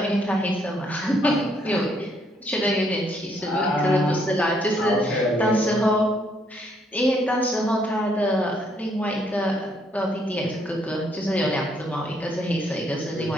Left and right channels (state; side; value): normal; both; correlation 0.70